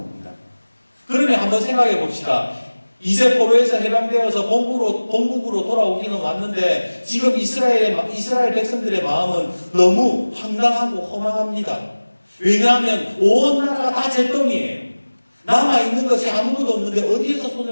그러면 한번 생각해 봅시다. 이제 포로에서 해방되어서 본국으로 돌아오기는 왔는데 지금 이스라엘 백성들의 마음은 너무 황당하고 허망합니다. 왜냐하면 온 나라가 다 잿더미예요. 남아있는 것이 아무것도 없는데 어디에서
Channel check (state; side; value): inverted; both; correlation -1.00